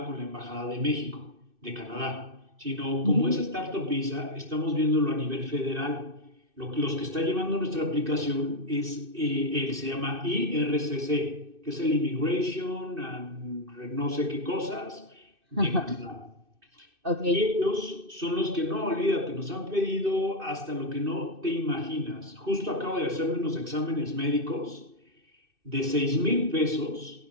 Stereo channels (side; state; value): left; late; 2.6 ms